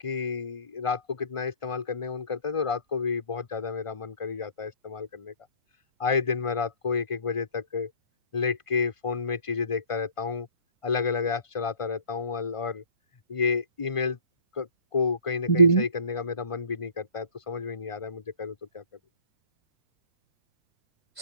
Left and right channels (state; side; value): late; right; 1.5 ms